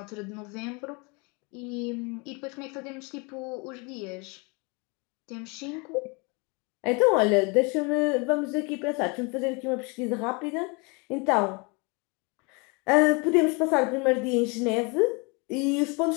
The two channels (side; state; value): right; quieter; 30.3 dB